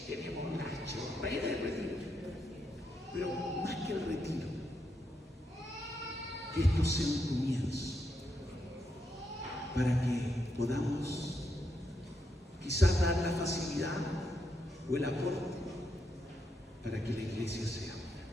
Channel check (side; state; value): both; normal; correlation 0.81